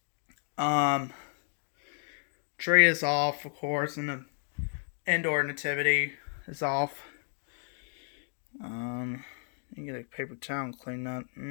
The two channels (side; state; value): right; silent; 56 dB below the other